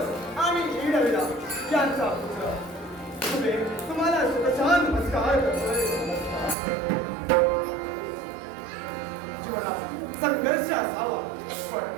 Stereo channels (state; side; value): drops out; left; at 6.6 s